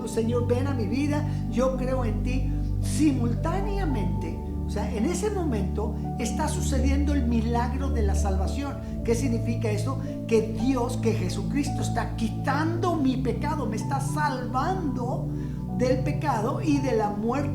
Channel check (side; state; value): both; identical; correlation 1.00